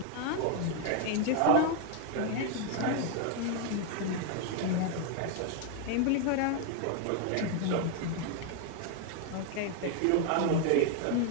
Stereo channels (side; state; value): both; different; correlation 0.01